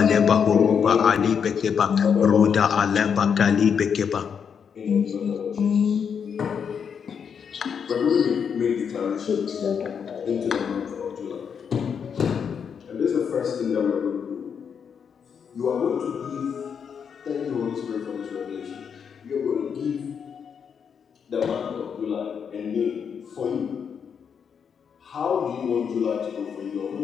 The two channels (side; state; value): right; quieter; 7.0 dB